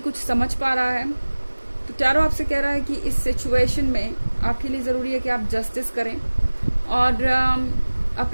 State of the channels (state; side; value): inverted; both; correlation -1.00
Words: समझ पा रहा है। तो टैरो आपसे कह रहा है कि इस सिचुएशन में आपके लिए ज़रूरी है कि आप जस्टिस करें और